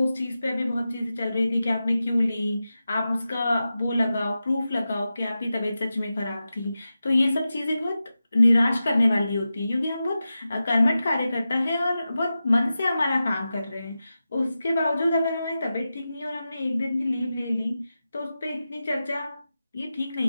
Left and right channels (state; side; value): inverted; both; correlation -0.92